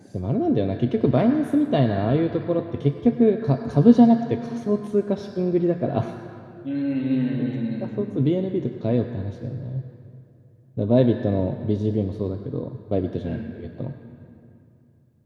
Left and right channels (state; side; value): identical; both; correlation 1.00